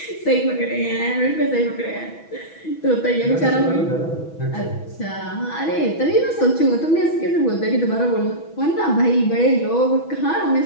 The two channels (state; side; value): late; right; 6.1 ms